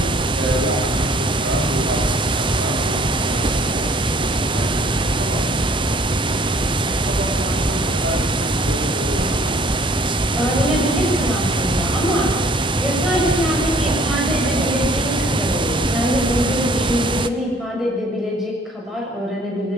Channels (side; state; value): both; normal; correlation 0.56